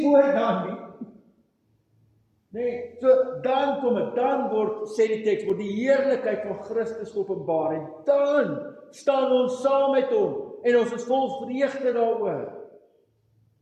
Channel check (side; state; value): both; identical; correlation 1.00